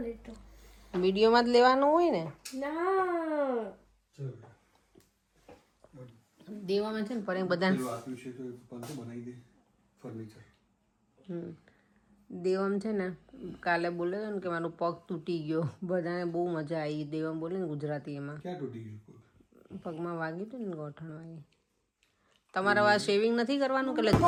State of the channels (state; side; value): identical; both; correlation 1.00